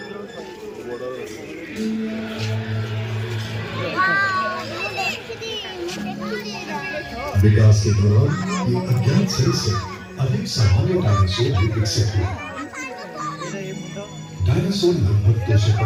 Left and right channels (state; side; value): identical; both; correlation 1.00